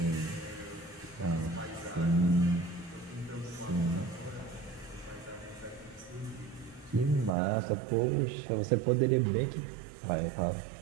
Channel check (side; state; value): left; drops out; at 7.3 s